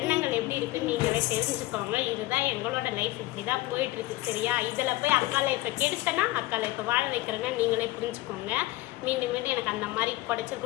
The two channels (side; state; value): right; quieter; 18.3 dB